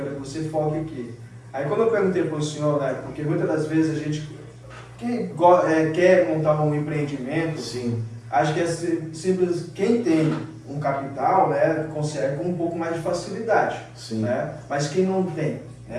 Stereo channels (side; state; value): both; identical; correlation 1.00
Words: que você foque aqui. Aí quando eu perguntei para o senhor, né, porque muitas das vezes a gente quer montar um empreendimento, Sim. acho que é simples, quem tem um capital, né, consegue com um pouco mais de facilidade. Sim. Né? Mas quem não tem,